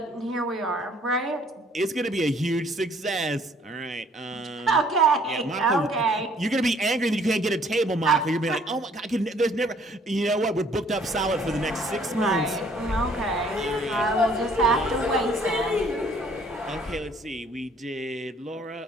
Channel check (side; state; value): both; normal; correlation 0.60